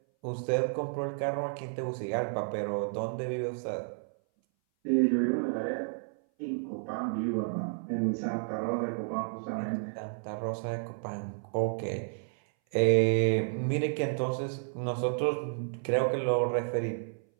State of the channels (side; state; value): left; silent; 57 dB below the other